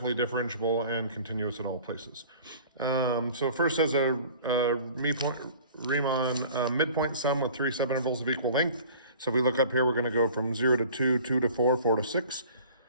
differentiable and continuous at all places. So first has a Riemann midpoint sum with 3 subintervals of equal length. So if we look up here, we're going to go from 0 to 2, 2 to 4, 4 to 6.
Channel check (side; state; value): both; inverted; correlation -0.47